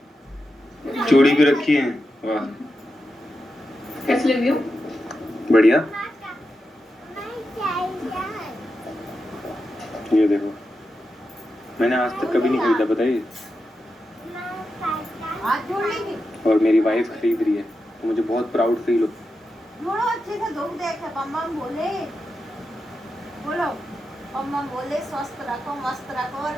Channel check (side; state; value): both; normal; correlation 0.89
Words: चूड़ी भी रखी है. वाह कैसे लग रही हो? बढ़िया. ये देखो मैंने आज तक कभी नहीं खरीदा, बताइए. हाथ जोड़ लेंगे. और मेरी वाइफ खरीद रही है तो मुझे बहुत प्राउड फील हो. जोड़ो अच्छे से. दो देखे बम बोले. बोलो बम बोले. स्वस्थ रखो, मस्त रखो और